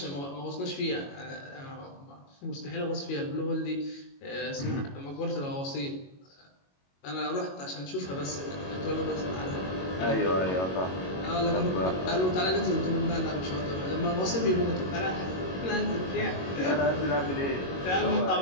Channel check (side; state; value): right; late; 22 ms